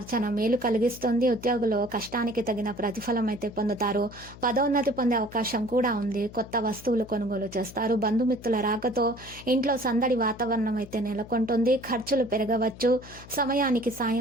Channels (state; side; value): noise; left; hum, 18 dB below the sound